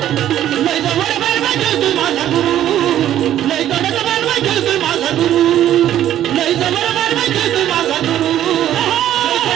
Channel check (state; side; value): quieter; left; 11.8 dB